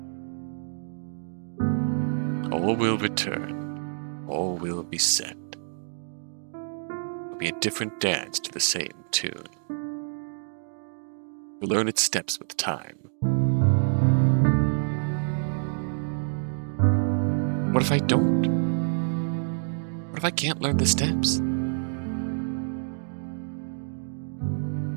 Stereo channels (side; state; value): left; silent; digital silence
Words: All will return. All will be set. It'll be a different dance to the same tune. You'll learn its steps with time. What if I don't? What if I can't learn the steps?